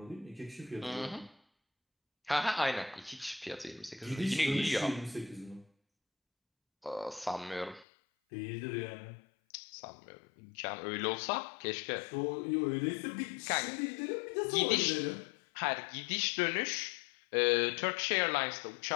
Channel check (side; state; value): right; drops out; at 7.9 s